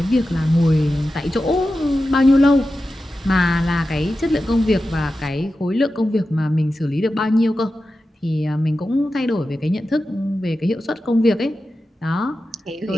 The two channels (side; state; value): both; normal; correlation 0.92